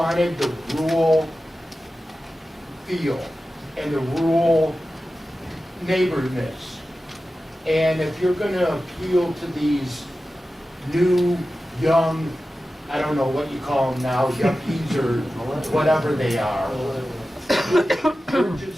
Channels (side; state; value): both; normal; correlation 0.94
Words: the rural feel and the rural neighborness. And if you're gonna appeal to these new, young, I don't know what you call them now, yuppies or whatever they are, you're